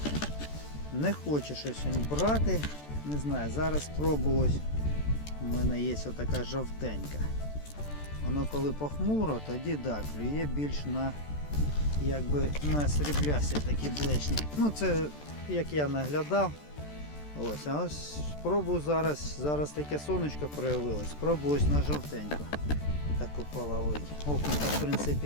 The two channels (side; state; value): right; late; 14 ms